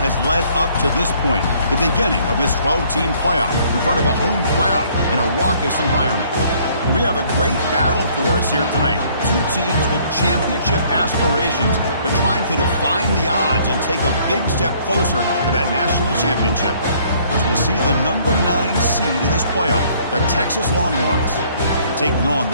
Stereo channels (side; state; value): both; inverted; correlation -0.61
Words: led up to this point, the beginning of this 12-team playoff in front of a home crowd in a raucous environment. We have a great battle for us here tonight. Two teams with championship aspirations, but trying to define the odds and take a big step closer to that national championship. As we'll see the number 9 seed in this playoff, the Texas Longhorns, taking on